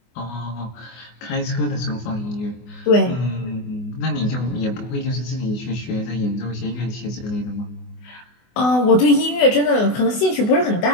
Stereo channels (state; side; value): late; right; 24 ms